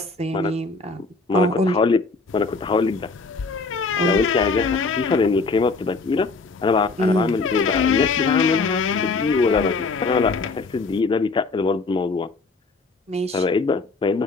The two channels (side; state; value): right; quieter; 3.9 dB